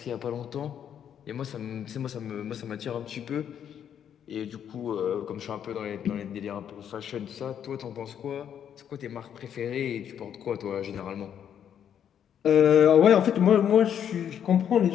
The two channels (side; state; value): right; quieter; 9.0 dB